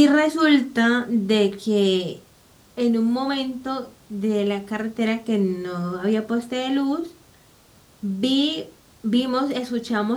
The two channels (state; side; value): identical; both; correlation 1.00